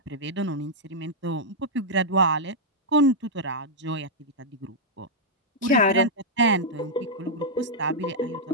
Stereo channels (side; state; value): both; normal; correlation -0.07